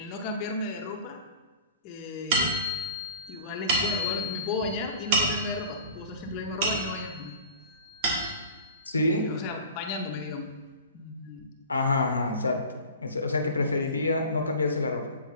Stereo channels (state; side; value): inverted; both; correlation -0.39